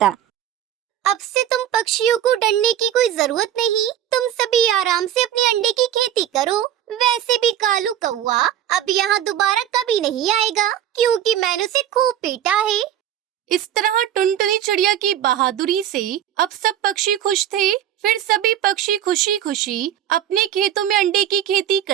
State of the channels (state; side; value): quieter; left; 10.8 dB